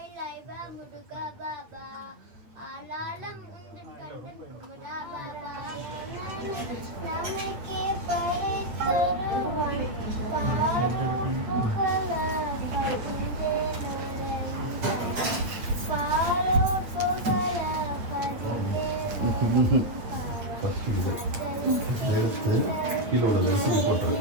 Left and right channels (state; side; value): late; left; 9.0 ms